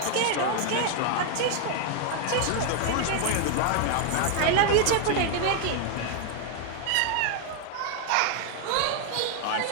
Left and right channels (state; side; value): different; both; correlation 0.00